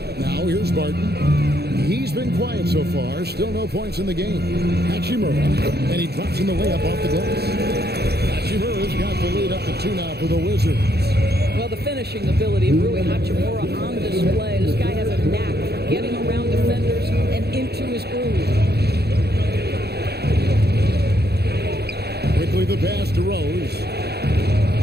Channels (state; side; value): late; left; 0.47 ms